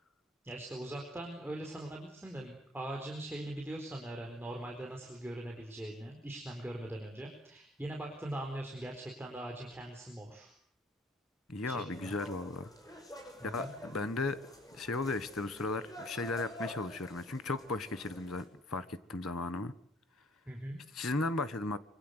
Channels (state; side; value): normal; both; correlation 0.58